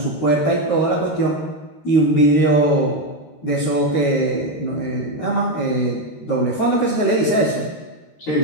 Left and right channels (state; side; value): late; right; 13 ms